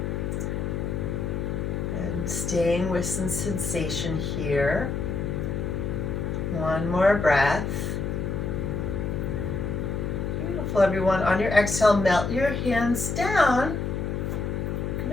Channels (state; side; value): noise; left; hum, 2 dB below the sound